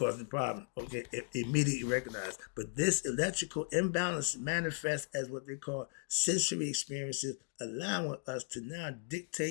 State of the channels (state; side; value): silent; right; 53 dB below the other